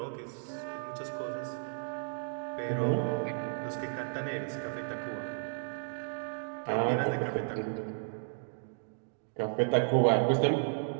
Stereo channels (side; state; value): left; silent; digital silence